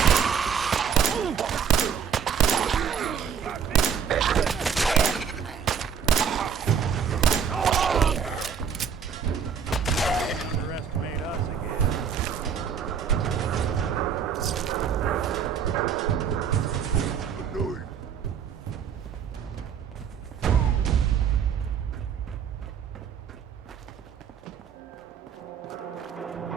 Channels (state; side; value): quieter; left; 7.1 dB